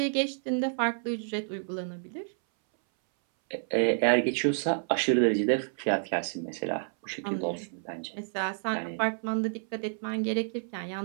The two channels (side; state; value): left; silent; 58 dB below the other